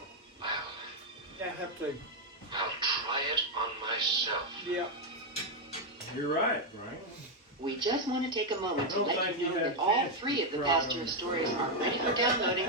I have to. I'll try it on myself. Yeah. You're right, Frank. We just want to take a moment to I don't let think you you know have that all chance 3 of the to Pasteur try stories are ready for downloading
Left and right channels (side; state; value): both; normal; correlation 0.02